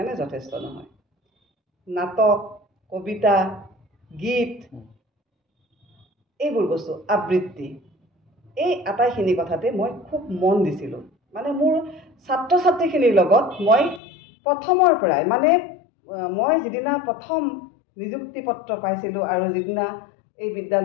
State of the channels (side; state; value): right; drops out; at 14.0 s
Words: যথেষ্ট নহয়। নাটক, কবিতা, গীত, এইবোৰ বস্তু, আবৃত্তি, এই আটাইখিনি কথাতে মই খুব মন দিছিলোঁ। মানে মোৰ ছাত্ৰ ছাত্ৰীখিনিৰ লগত মই প্ৰথমৰ পৰাই, মানে মই যিদিনা প্ৰথম নিযুক্তি পত্ৰ পাইছিলোঁ আৰু যিদিনা এই